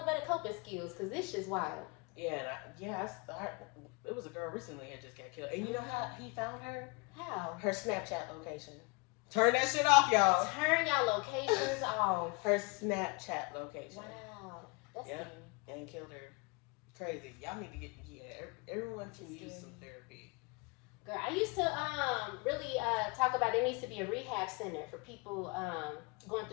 better coping skills because this shit's wild. Yeah, it was a girl recently that just got killed. And you know how he found her? How? Her Snapchat location. Turn that shit off, y'all. Turn y'all locations off. Her Snapchat location. Wow. That's and killed her. Crazy. Y'all need to get, everyone can use some therapy. Girl, I used to really talk about there needs to be a rehab center for people going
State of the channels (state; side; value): quieter; right; 29.2 dB